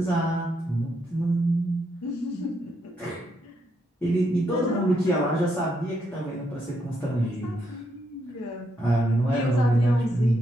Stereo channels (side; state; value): both; normal; correlation 0.78